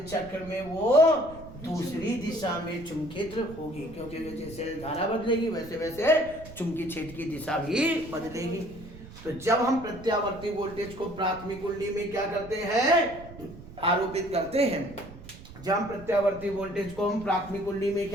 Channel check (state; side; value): noise; right; rumble, 16 dB below the sound